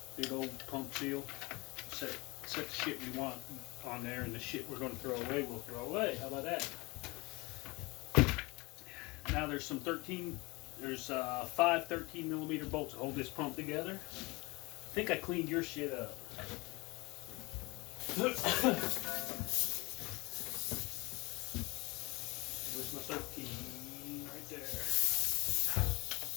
old pump seal. Set the shit we want on there, and the shit we're going to throw away, we'll throw away. How about that? Now there's some 5 13 millimeter bolts that hold this pump together. I think I cleaned your shit up. Where's my 13? Right there.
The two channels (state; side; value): quieter; right; 24.4 dB